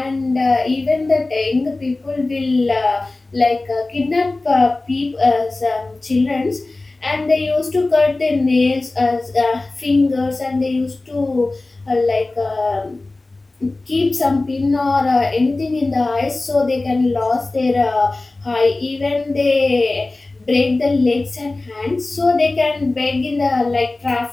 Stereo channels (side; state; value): right; quieter; 3.1 dB